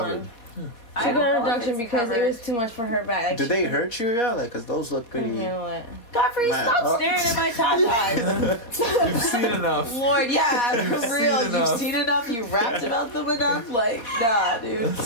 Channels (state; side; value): late; right; 4.2 ms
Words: one. I She don't got a know if reduction it's because it covered. was too much for her back. Like, Do she they hurt you, yeah? Like, cause those look couldn't pretty. handle it. Godfrey, Man, stop staring at my tatas. You've seen enough. Lord, yeah, You've for seen real. You've enough. seen enough. You rapped about them enough. Like, nah, dude.